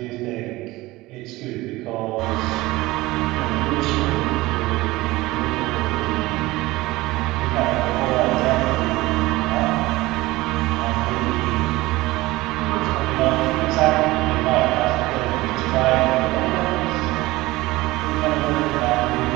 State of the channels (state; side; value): quieter; left; 19.4 dB